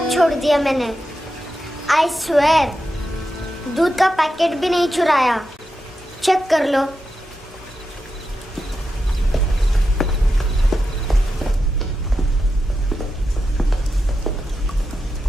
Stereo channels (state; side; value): normal; both; correlation 0.88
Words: छोड़ दिया मैंने। आई स्वेयर, दूध का पैकेट भी नहीं चुराया। चेक कर लो।